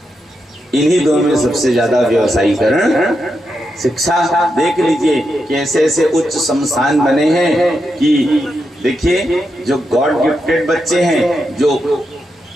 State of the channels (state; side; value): normal; both; correlation 0.85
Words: इन्हीं दो में सबसे ज्यादा व्यवसायीकरण। शिक्षा देख लीजिए कि ऐसे ऐसे उच्च संस्थान बने हैं कि देखिए, जो गॉड गिफ्टेड बच्चे हैं, जो